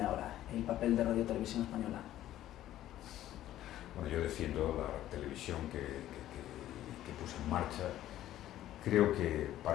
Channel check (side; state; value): right; quieter; 13.2 dB